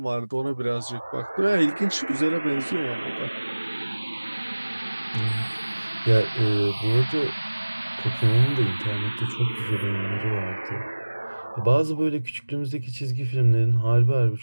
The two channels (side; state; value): both; inverted; correlation -1.00